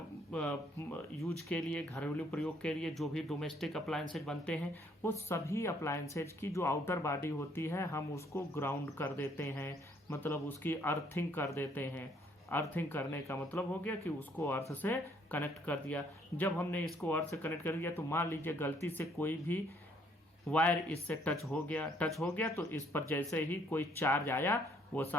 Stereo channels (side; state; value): both; normal; correlation 0.65